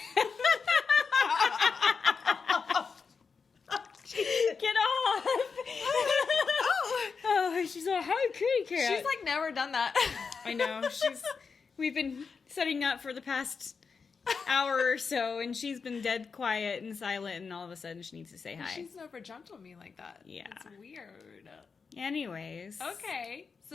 Get off! Oh, she's like, hi, kitty cat. She's like never done that. I know. We've been setting up for the past hour or so, and she's been dead quiet and silent, and all of a sudden she needs to say hi. She's never jumped on me like that. Yeah. It's weird. Anyways. Okay, so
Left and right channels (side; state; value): right; quieter; 5.3 dB